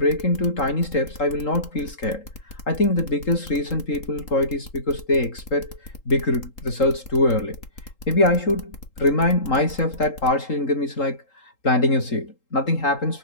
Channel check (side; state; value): right; late; 3.8 ms